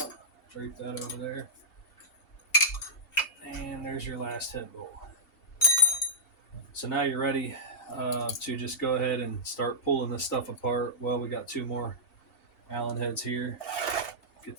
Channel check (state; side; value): late; right; 2.7 ms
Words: Drape that over there. And there's your last head bolt. So now you're ready to just go ahead and start pulling this stuff apart. Well, we got two more Allen heads here. Get